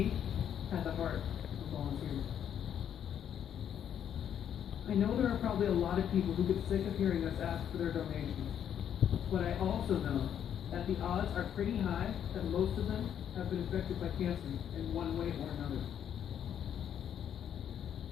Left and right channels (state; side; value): quieter; right; 9.3 dB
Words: had the heart of a volunteer. I know there are probably a lot of people who get sick of hearing us ask for their donations, but I also know that the odds are pretty high that most of them have been affected by cancer in one way or another.